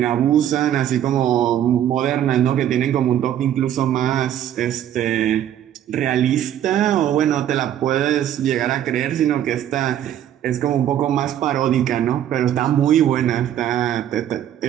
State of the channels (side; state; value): left; quieter; 10.9 dB